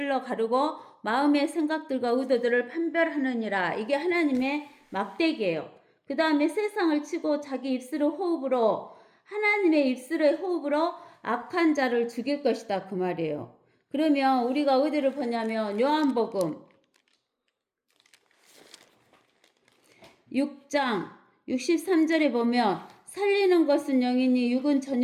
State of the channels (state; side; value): identical; both; correlation 1.00